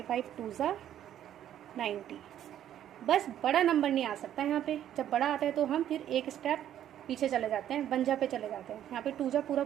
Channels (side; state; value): left; quieter; 11.0 dB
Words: टू ज़ा 90, बस बड़ा नंबर नहीं आ सकता यहाँ पे। जब बड़ा आता है तो हम फिर एक स्टेप पीछे चले जाते हैं, 1 जा पे चले जाते हैं। यहाँ पे 2 जा